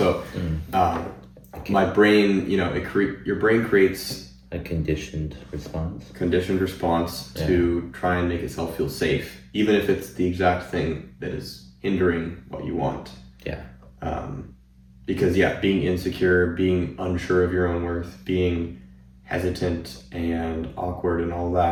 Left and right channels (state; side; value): identical; both; correlation 1.00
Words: my brain, you know, your brain creates a conditioned response to try and make itself feel safe, even if it's the exact thing that is hindering what you want. Yeah. Because being insecure, being unsure of your own worth, being hesitant and awkward and all